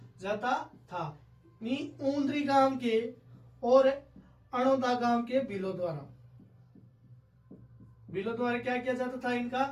जाता था। ऊंद्री गांव के और अणोदा गांव के भीलों द्वारा क्या किया जाता था, इनका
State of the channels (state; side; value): identical; both; correlation 1.00